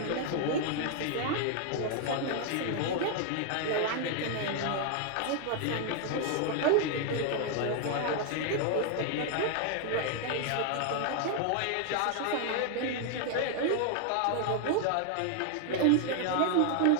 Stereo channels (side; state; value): both; different; correlation 0.00